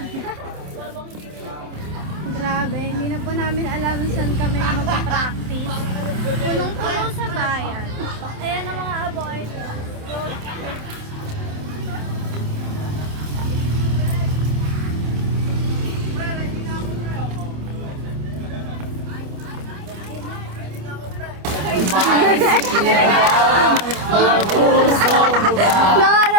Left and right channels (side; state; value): left; late; 27 ms